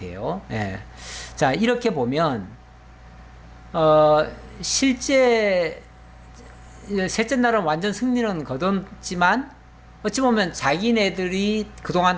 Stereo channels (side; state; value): both; identical; correlation 1.00